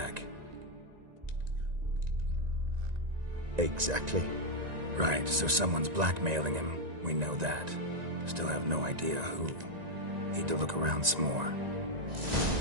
Exactly. Right, so someone's blackmailing him. We know that. Still have no idea who. Need to look around some more.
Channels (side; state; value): left; late; 1.9 ms